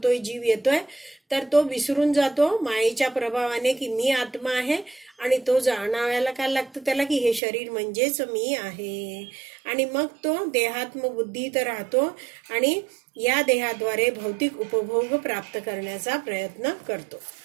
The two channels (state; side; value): drops out; left; at 7.4 s